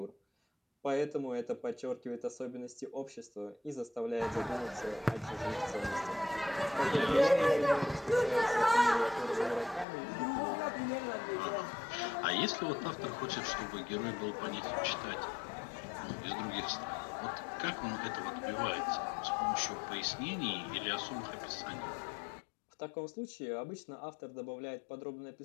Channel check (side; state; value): right; drops out; at 9.9 s